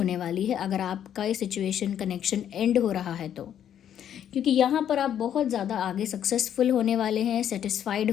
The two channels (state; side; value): quieter; right; 9.8 dB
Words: वाली है अगर आपका ये सिचुएशन कनेक्शन एंड हो रहा है तो। क्योंकि यहाँ पर आप बहुत ज़्यादा आगे सक्सेसफुल होने वाले हैं, सेटिस्फाइड